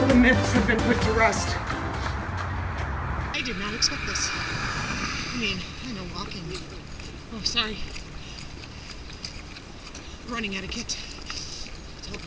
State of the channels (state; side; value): identical; both; correlation 1.00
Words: the myths have been put to rest. I did not expect this. I mean, I know walking. Oh, sorry. Running etiquette. Tell